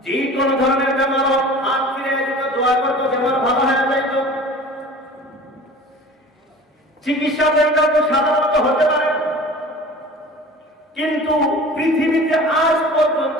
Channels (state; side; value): normal; both; correlation 0.42